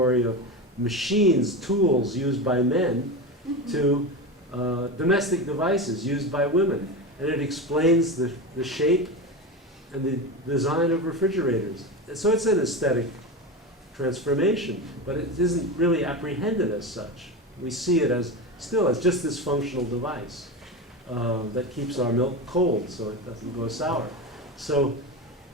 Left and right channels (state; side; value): normal; both; correlation 0.22